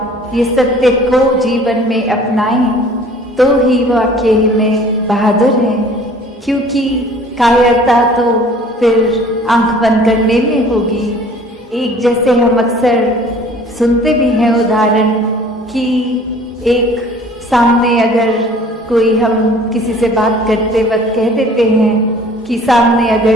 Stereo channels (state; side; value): normal; both; correlation 0.51